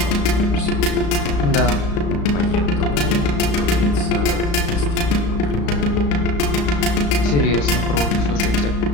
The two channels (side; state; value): right; late; 35 ms